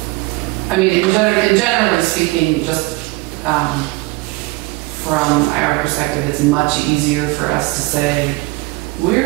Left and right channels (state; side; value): quieter; left; 23.2 dB